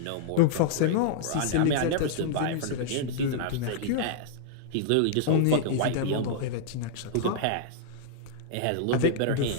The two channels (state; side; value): different; both; correlation -0.01